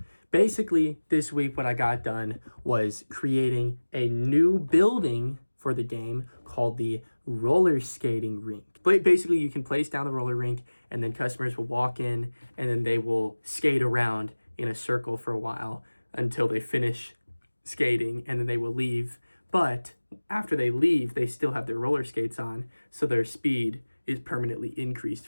Basically, this week what I got done was creating a new building for the game called the roller skating rink. But basically, you can place down the roller rink, and then customers will walk in, and then they will skate around in a circle for a while until they finish skating, and then they will leave. But after they leave, they still have their roller skates on, so their speed is permanently increased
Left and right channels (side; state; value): both; inverted; correlation -1.00